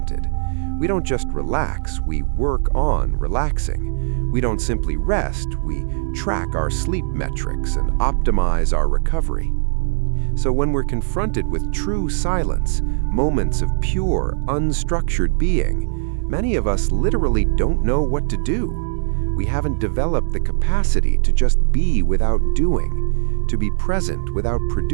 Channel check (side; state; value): left; silent; 63 dB below the other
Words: We don't just relax, we work on relaxing. We don't simply rest, we track our sleep metrics and optimize our recovery. So when we're confronted with true silence, moments of pure, unstructured being, many of us literally don't know what to do. We haven't developed the capacity to just be without doing, to be present without